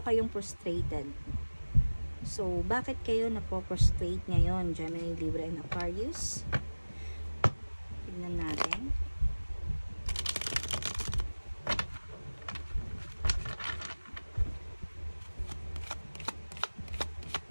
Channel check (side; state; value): both; inverted; correlation -1.00